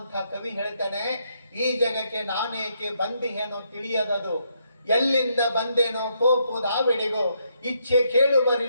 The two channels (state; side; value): inverted; both; correlation -0.75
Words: ಕವಿ ಹೇಳ್ತಾನೆ, ಈ ಜಗಕ್ಕೆ ನಾನೇಕೆ ಬಂದಿಹೇನೋ ತಿಳಿಯದದು, ಎಲ್ಲಿಂದ ಬಂದೇನೋ ಕೋಪುದಾವೆಡೆಗೋ, ಇಚ್ಛೆ